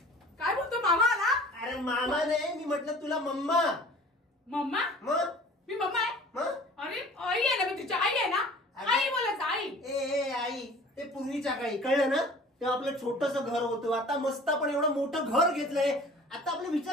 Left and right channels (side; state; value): both; normal; correlation 0.46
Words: काय बोलतो मामा आला? अरे मामा नाही, मी म्हटलं तुला मम्मा. मम्मा? मग मी मम्मा आहे? मग अरे आई आहे ना, मी तुझी आई आहे ना. आई बोलायचं आई. ए आई, ते पूर्वीच्या काळी कळलं ना, तेव्हा आपलं छोटस घर होतं. आता मस्त आपण एवढं मोठं घर घेतलंय. आता आपले